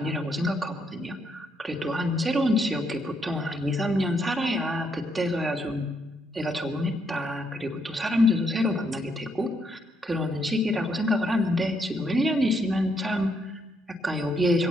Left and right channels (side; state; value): both; normal; correlation 0.75